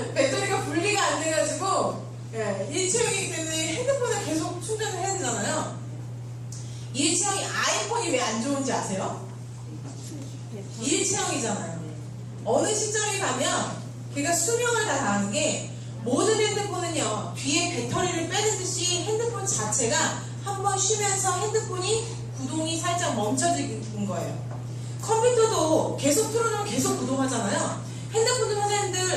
배터리가 분리가 안 돼가지고 예, 일체형이기 때문에 핸드폰을 계속 충전을 해야 되잖아요. 일체형이 아이폰이 왜 안 좋은지 아세요? 일체형이잖아요. 어느 시점에 가면 걔가 수명을 다 다하는 게 모든 핸드폰은요 뒤에 배터리를 빼는 듯이 핸드폰 자체가 한번 쉬면서 핸드폰이 구동이 살짝 멈춰지는 거예요. 컴퓨터도 계속 틀어놓으면 계속 구동하잖아요. 핸드폰도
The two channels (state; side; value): identical; both; correlation 1.00